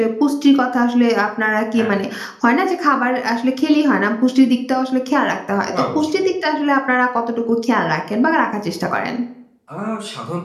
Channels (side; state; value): both; identical; correlation 1.00